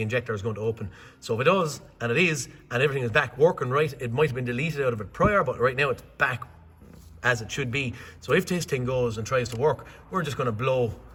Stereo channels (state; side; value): identical; both; correlation 1.00